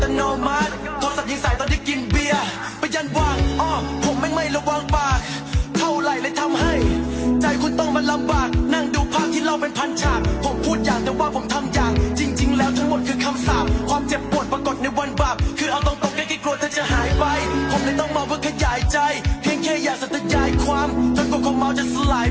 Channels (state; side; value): identical; both; correlation 1.00